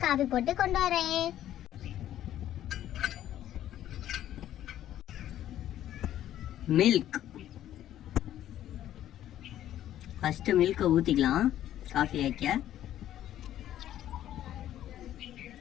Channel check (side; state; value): right; quieter; 12.1 dB